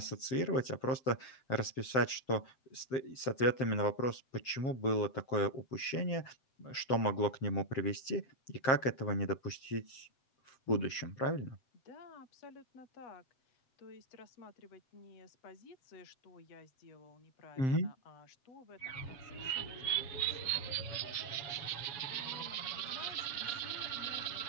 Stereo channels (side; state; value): right; late; 7.6 ms